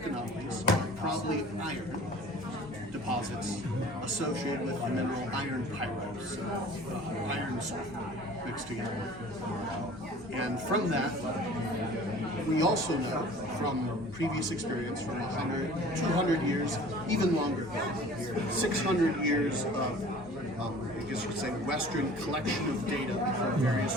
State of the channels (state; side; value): normal; both; correlation 0.46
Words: anomalies are probably iron deposits associated with the mineral iron pyrite, so iron sulfur mixed together. And from that, we also know from previous experience from 100, 200 years, even longer, 600 years of, I guess you could say, Western collection of data from